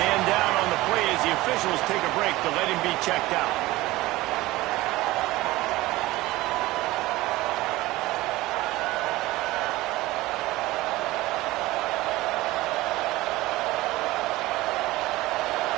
Man down on the play as the officials take a break to let him be checked out.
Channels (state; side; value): quieter; left; 18.7 dB